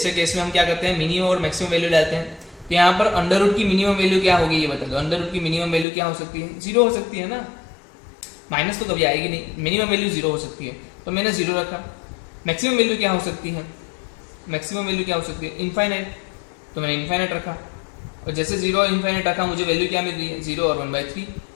केस में हम क्या करते हैं, मिनिमम और मैक्सिमम वैल्यू डालते हैं। तो यहाँ पर अंडर रूट की मिनिमम वैल्यू क्या होगी, ये बता दो। अंडर रूट की मिनिमम वैल्यू क्या हो सकती है, 0 हो सकती है ना, माइनस तो कभी आएगी नहीं, मिनिमम वैल्यू 0 हो सकती है, तो मैंने 0 रखा। मैक्सिमम वैल्यू क्या हो सकती है, मैक्सिमम वैल्यू क्या हो सकती है, इनफाइनाइट, तो मैंने इनफाइनाइट रखा। और जैसे 0 और इनफाइनाइट रखा, मुझे वैल्यू क्या मिल रही है, 0 और 1/3।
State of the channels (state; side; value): drops out; right; at 5.9 s